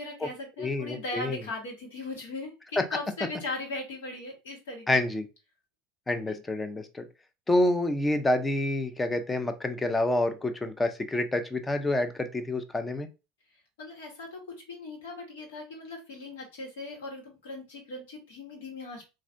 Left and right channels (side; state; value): both; normal; correlation 0.75